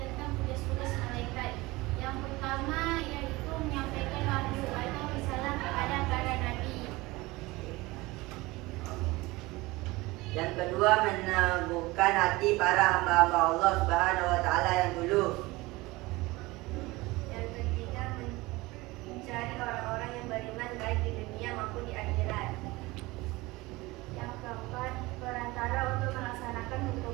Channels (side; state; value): left; quieter; 21.3 dB